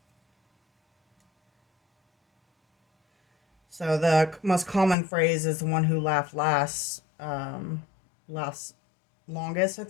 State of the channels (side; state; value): right; drops out; at 5.0 s